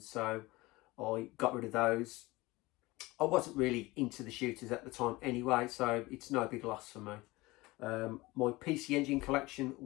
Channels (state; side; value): quieter; right; 21.2 dB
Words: I got rid of those. I wasn't really into the shooters at the time anyway, so it's no big loss for me. My PC Engine collection